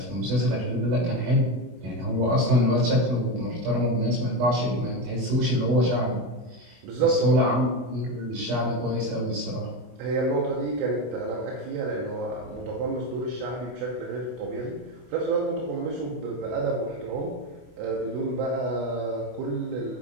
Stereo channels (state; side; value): late; left; 24 ms